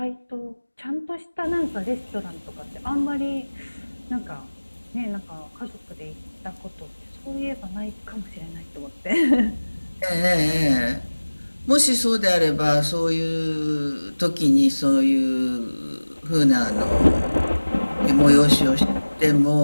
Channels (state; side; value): inverted; both; correlation -1.00